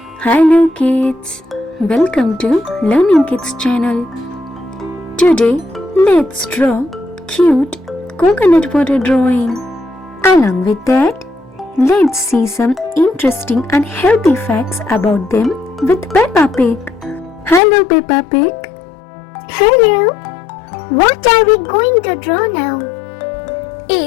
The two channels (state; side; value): drops out; right; at 17.6 s